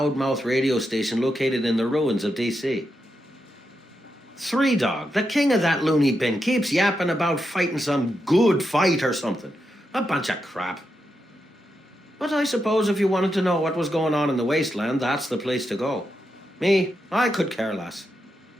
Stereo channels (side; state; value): both; normal; correlation 0.85